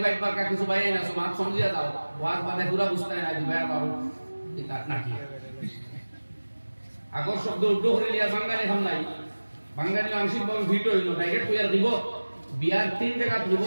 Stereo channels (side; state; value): both; inverted; correlation -1.00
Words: মার্কা কিছু বাইরে না সমাজ সমঝিয়া দাও ওয়াজ বাদে পুরা বুঝতে না দিবা বাবু কিতা নাকি আগর শব্দ উগ্র করে লিয়া বাঙালি হাম নাই বাঙালি আংশিক ভাবে ভিটো হইলো ডাইরেক্ট কইয়া দিব বিয়ার তিন জায়গা